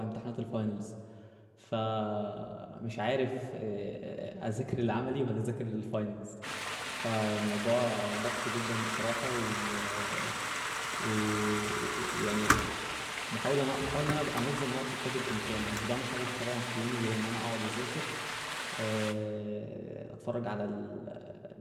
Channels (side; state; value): both; identical; correlation 1.00